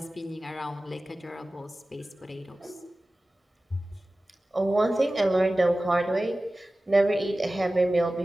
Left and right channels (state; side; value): normal; both; correlation 0.96